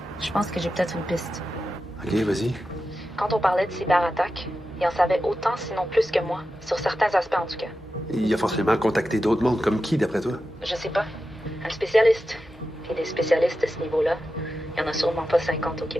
je pense que j'ai peut-être une piste. OK, vas-y. Quand on parlait de cyberattaque, il en savait autant, sinon plus que moi, sur certains aspects en tout cas. Il a forcément contacté d'autres mondes, comme qui, d'après toi? Je sais pas. Un spécialiste. Puis des spécialistes à ce niveau-là, il y en a sûrement pas 50 au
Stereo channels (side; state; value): both; normal; correlation 0.91